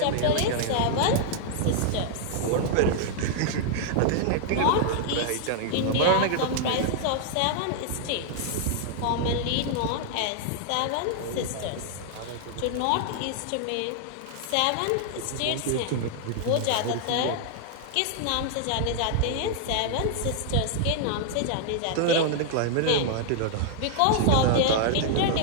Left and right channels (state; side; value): different; both; correlation 0.00